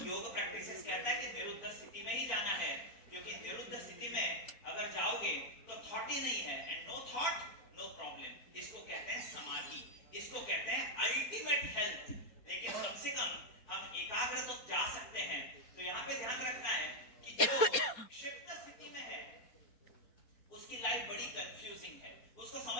योग प्रैक्टिसेस कहता है कि निरुद्ध स्थिति में ही जाना है, क्योंकि निरुद्ध स्थिति में अगर जाओगे तो थॉट ही नहीं है, and no thought no problem. इसको कहते हैं समाधि, इसको कहते हैं अल्टीमेट हेल्थ। लेकिन कम से कम हम एकाग्र तो जा सकते हैं। तो यहाँ पे ध्यान रखना है कि जो क्षिप्त स्थिति में है उसकी लाइफ बड़ी कंफ्यूजिंग है, उसको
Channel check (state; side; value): late; right; 4.2 ms